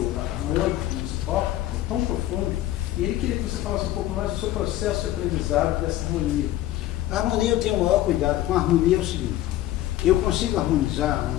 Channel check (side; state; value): right; quieter; 14.3 dB